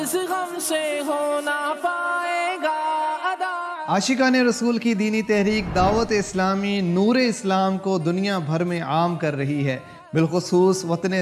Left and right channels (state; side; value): identical; both; correlation 1.00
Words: غم سے ہونا پائے گا ادا۔ عاشقان رسول کی دینی تحریک دعوت اسلامی نور اسلام کو دنیا بھر میں عام کر رہی ہے۔ بالخصوص وطن